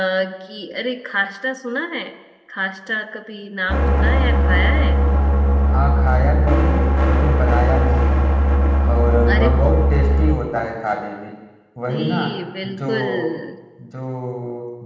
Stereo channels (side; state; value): both; identical; correlation 1.00